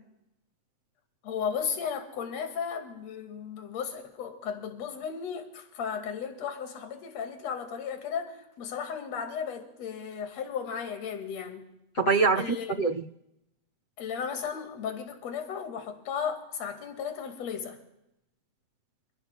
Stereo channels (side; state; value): right; late; 8.4 ms